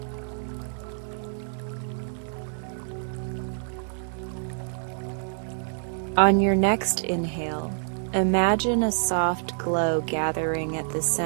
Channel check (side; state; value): left; silent; 60 dB below the other